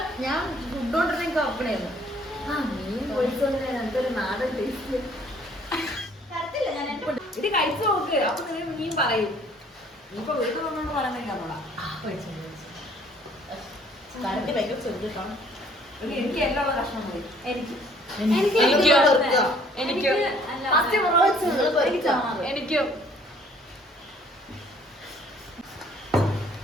ഞാൻ ഫുഡ് കൊണ്ടിരുന്നെങ്കിൽ ഓപ്പണായിരുന്നു. ആ മീൻ പൊളിച്ചോണ്ട് എന്തൊരു നാടൻ ടേസ്റ്റ്. ഇത് കഴിച്ചു നോക്ക്, അപ്പൊ നിങ്ങൾ മീൻ പറയും. ഇപ്പൊ വീട്ടിൽ വന്നോണ്ട് പറയുന്നില്ല നമ്മളാ. എനിക്ക് എല്ലാം ഉള്ള കഷ്ണം മതി. എനിക്ക്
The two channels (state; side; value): normal; both; correlation 0.59